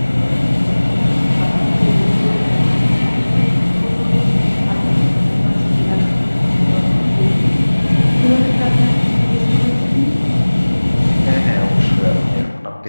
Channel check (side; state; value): both; inverted; correlation -1.00